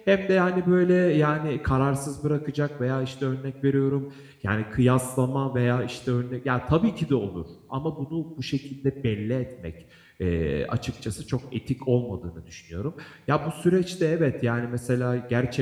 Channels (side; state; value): both; identical; correlation 1.00